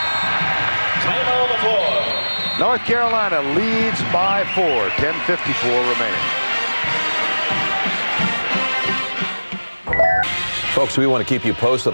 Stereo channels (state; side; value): inverted; both; correlation -1.00